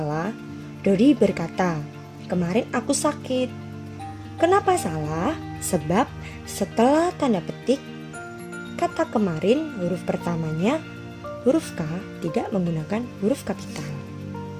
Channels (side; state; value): both; identical; correlation 1.00